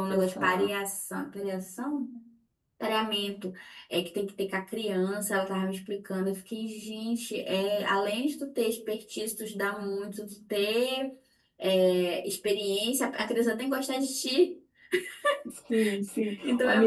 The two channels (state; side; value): identical; both; correlation 1.00